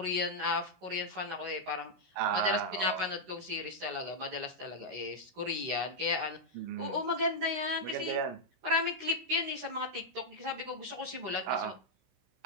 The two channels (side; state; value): left; late; 16 ms